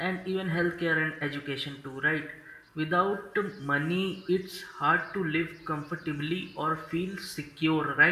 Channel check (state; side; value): identical; both; correlation 1.00